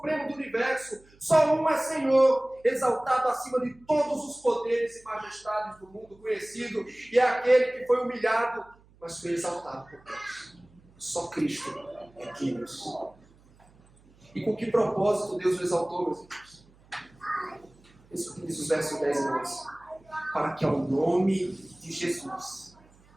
do universo, só um é Senhor, exaltado acima de todos os poderes e majestades do mundo conhecido, e é aquele que foi humilhado, mas foi exaltado por Deus. Só Cristo é Kyrios. E com que propósito Deus o exaltou, meus irmãos? Isso que diz os versos 10 e 11. Para que ao nome de Jesus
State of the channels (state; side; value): noise; right; hum, 29 dB below the sound